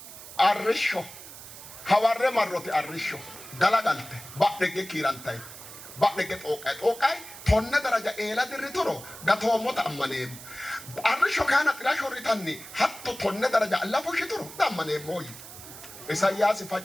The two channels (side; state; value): right; noise; hiss, 15 dB below the sound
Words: አርሾ ሐዋረ ማሮት አርሾ ገላጋልተ ባደገ ኪራንታይ ባደገ ጦቃይ ቶነ ደረጃ ኤላ ድሪቶሮ ጋቶሞት አመኔም አርሾ ካና ጥራሾ ሪታኒ ሀቶ ቶነ ደረጃ አላፎሽ ትሩ ዳመኔ ሞይ ኢሳያስ